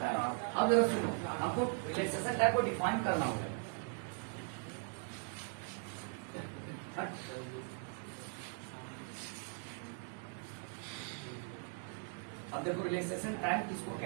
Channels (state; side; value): silent; left; 51 dB below the other